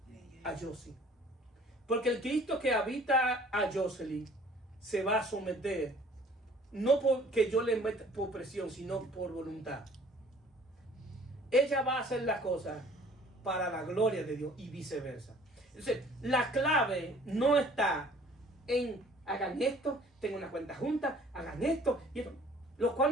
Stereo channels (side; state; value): both; normal; correlation 0.53